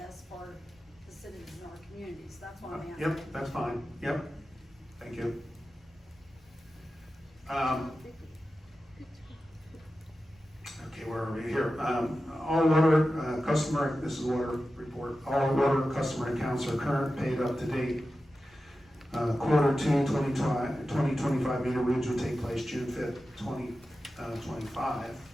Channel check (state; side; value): noise; left; rumble, 30 dB below the sound